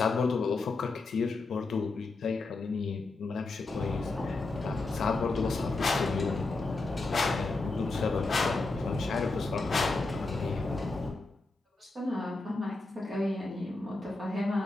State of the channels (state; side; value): quieter; right; 3.4 dB